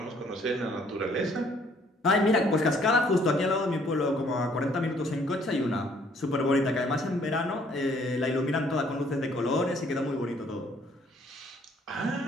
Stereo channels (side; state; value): both; normal; correlation 0.62